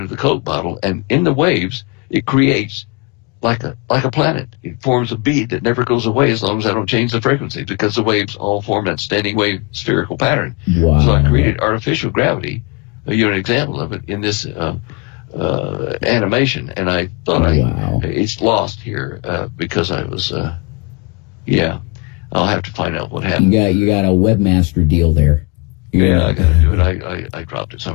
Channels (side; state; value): right; quieter; 29.2 dB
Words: the Coke bottle. And in the waves, it creates like a planet. It forms a bead that never goes away as long as I don't change the frequency, because the waves all form that standing wave spherical pattern. Wow. So I created artificial gravity, an example of it in this animation, and I thought it's lost here because I was I'll have to find out what happened. You got a webmaster deal there. Yeah, I got to do it. I dropped it